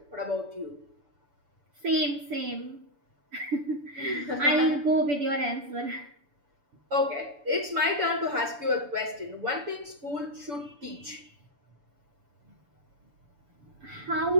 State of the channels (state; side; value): late; left; 6.9 ms